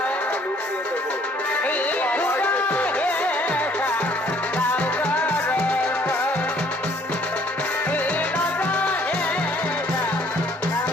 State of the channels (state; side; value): normal; both; correlation 0.60